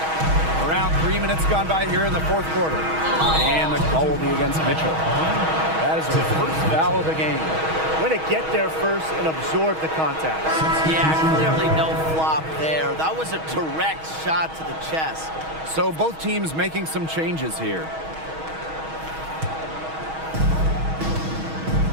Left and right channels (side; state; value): left; late; 6.3 ms